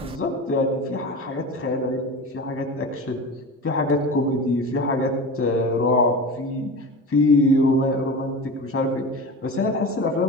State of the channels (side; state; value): both; normal; correlation 0.30